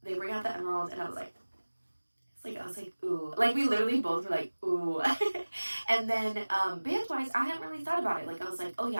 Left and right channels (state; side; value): inverted; both; correlation -1.00